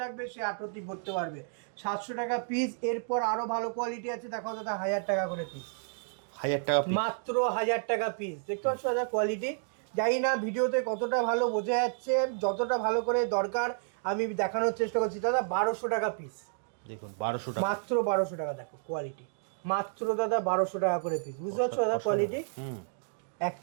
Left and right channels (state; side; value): silent; left; digital silence